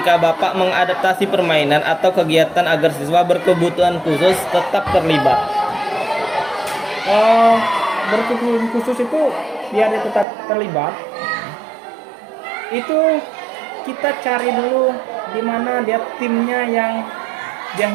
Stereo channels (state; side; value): drops out; left; at 10.2 s